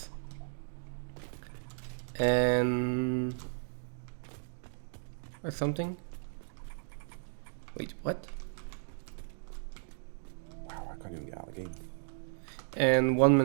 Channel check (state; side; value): silent; left; digital silence